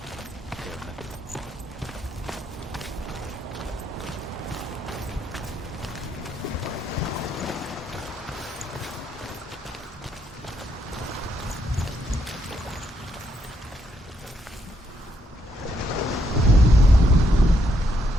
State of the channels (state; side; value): normal; both; correlation 0.75